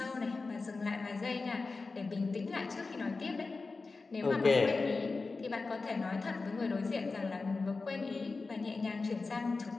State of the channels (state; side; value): quieter; right; 3.9 dB